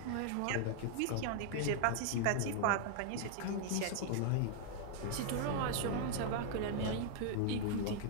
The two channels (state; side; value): different; both; correlation 0.00